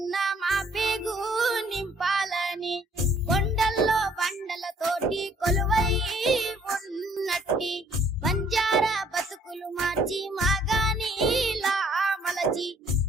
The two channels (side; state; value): both; normal; correlation 0.62